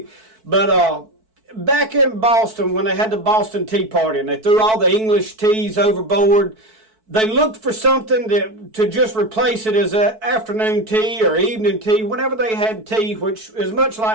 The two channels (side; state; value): left; late; 4.6 ms